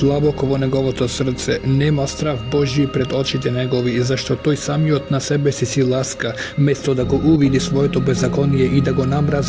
vo negovото srce, nema strav Božji pred očite negovi, zašto toj samiot na sebe si laska, mesto da go uvidi svojeto bezakonije i da go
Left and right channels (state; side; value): identical; both; correlation 1.00